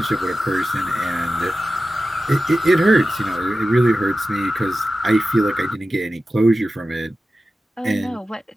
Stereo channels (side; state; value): both; normal; correlation 0.94